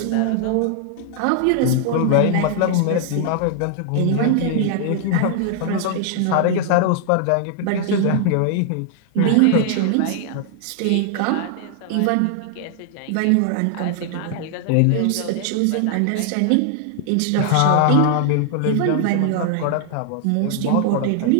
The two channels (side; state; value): both; different; correlation 0.00